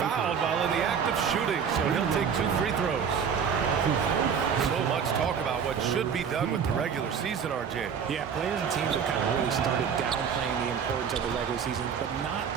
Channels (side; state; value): left; quieter; 7.1 dB